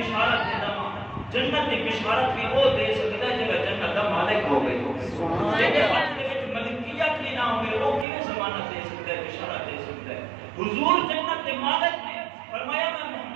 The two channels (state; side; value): drops out; left; at 8.1 s